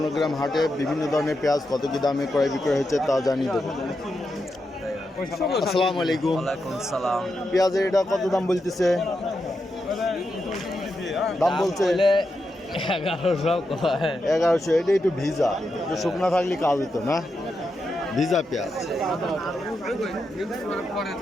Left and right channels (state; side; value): normal; both; correlation 0.86